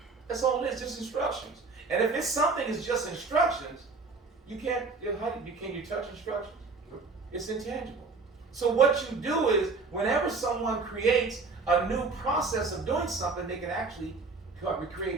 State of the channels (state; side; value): quieter; left; 4.1 dB